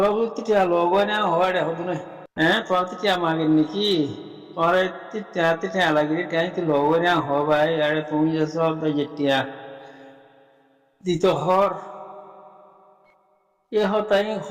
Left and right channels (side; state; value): both; identical; correlation 1.00